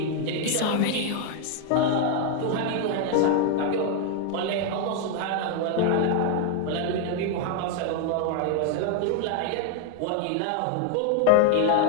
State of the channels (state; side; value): different; both; correlation 0.00